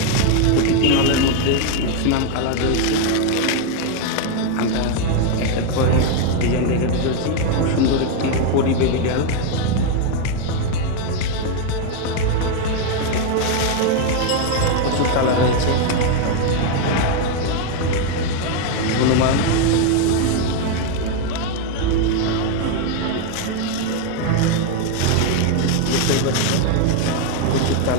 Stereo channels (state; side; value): different; both; correlation 0.01